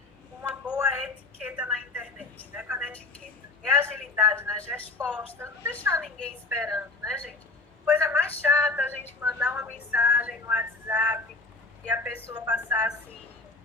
boa etiqueta na internet, né? Com a etiqueta. É agilidade nas respostas, não deixar ninguém esperando, né, gente? Coisa mais chata a gente mandar uma mensagem no WhatsApp e a pessoa passar, assim,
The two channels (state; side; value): quieter; right; 3.4 dB